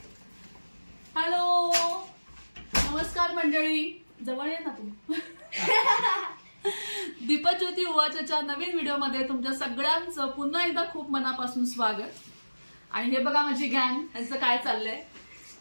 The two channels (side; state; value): both; inverted; correlation -1.00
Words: Hello नमस्कार मंडळी. जवळ ये ना तू. दीपज्योती उवाचच्या नवीन व्हिडिओमध्ये तुमच्या सगळ्यांचं पुन्हा एकदा खूप मनापासून स्वागत. आणि हे बघा माझी गँग, यांचं काय चाललंय.